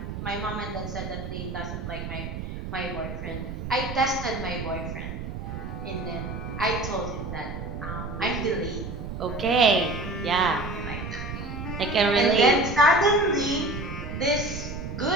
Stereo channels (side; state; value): right; noise; rumble, 7 dB below the sound